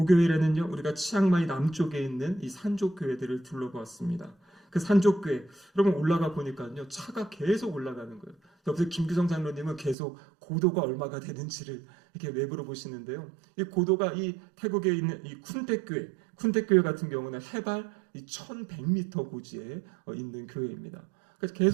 우리가 치앙마이 남쪽에 있는 이 산족 교회들을 둘러보았습니다. 그 산족 교회, 여러분 올라가 보니까요, 차가 계속 올라가는 거예요. 옆에서 김규성 장로님은 계속 고도가 얼마가 되는지를 이렇게 외부로 보시는데요. 이 고도가 이 태국에 있는 이 쿤택 교회 같은 경우는 해발 1100m 고지에 있는 교회입니다. 그래서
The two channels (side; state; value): left; drops out; at 10.0 s